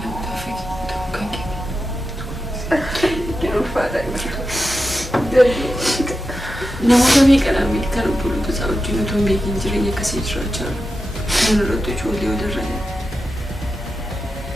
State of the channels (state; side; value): normal; both; correlation 0.90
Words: namoota fakkii ta'uu kan kenne. Yeroo faadaa namoota meeqadhaan kan obboloota isaa wajjin otoo hin beekin jireenya akkasii jiraachaa jiru. Kan irratti ijoollee walirra